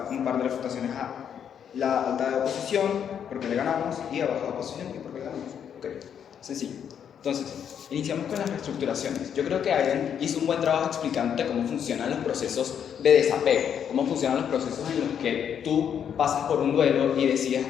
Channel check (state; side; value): quieter; right; 8.4 dB